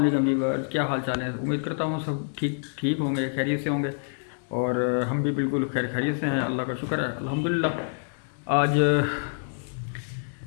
व्यूअर्स, क्या हाल चाल है। उम्मीद करता हूँ सब ठीक होंगे, खैरियत से होंगे। और हम भी बिल्कुल खैरियत से हैं, अल्लाह का शुक्र है, अल्हम्दुलिल्लाह।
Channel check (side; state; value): right; silent; digital silence